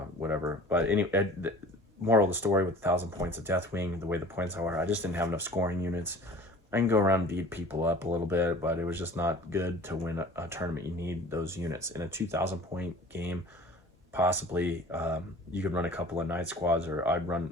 whatever. But anyway, moral of the story, with 1,000 points of Deathwing, the way the points are, I just didn't have enough scoring units. I can go around and beat people up a little bit, but it was just not good to win a tournament. You need those units. In a 2,000 point game, possibly you could run a couple of Night squads, or I'd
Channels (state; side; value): normal; both; correlation 0.44